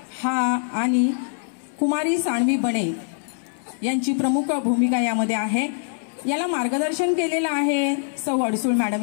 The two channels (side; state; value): right; silent; digital silence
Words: हा आणि कुमारी सानवी बणे यांची प्रमुख भूमिका यामध्ये आहे. याला मार्गदर्शन केलेलं आहे सौ अडसूळ मॅडम